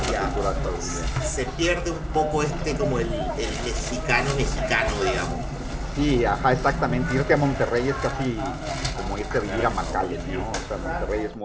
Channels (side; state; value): both; identical; correlation 1.00